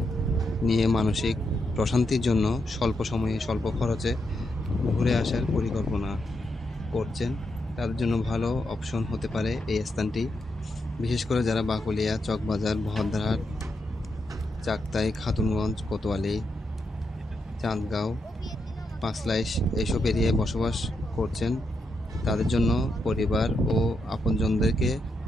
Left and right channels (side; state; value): both; normal; correlation 0.83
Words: নিয়ে মানসিক প্রশান্তির জন্য স্বল্প সময়ে স্বল্প খরচে ঘুরে আসার পরিকল্পনা করছেন, তাদের জন্য ভালো অপশন হতে পারে এই স্থানটি। বিশেষ করে যারা বাকলিয়া, চকবাজার, বহদ্দারহাট, চাকতাই, খাতুনগঞ্জ, কোতোয়ালি, চাঁদগাঁও, পাঁচলাইশ এইসব এরিয়ায় বসবাস করছেন, তাদের জন্য পরিবার ও আপনজনদেরকে